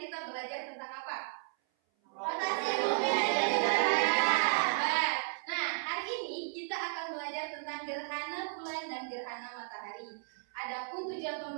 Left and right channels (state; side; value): silent; left; 55 dB below the other